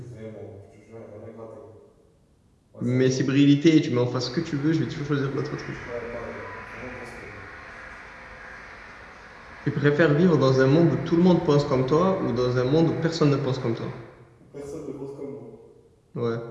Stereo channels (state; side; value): identical; both; correlation 1.00